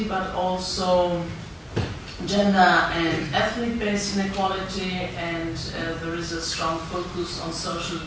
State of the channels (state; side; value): identical; both; correlation 1.00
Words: but also gender and ethnic-based inequality, and there is a strong focus on social